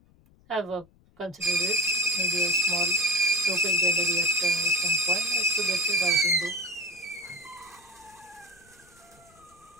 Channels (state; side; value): noise; left; rumble, 30 dB below the sound